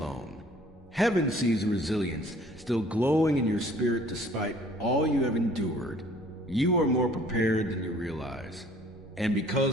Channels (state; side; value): normal; both; correlation 0.55